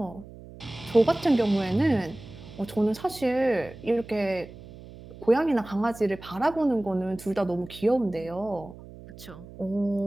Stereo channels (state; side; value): noise; right; hum, 17 dB below the sound